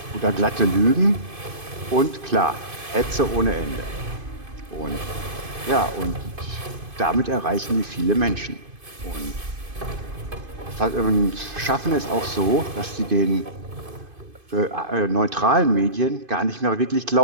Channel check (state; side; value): late; left; 2.5 ms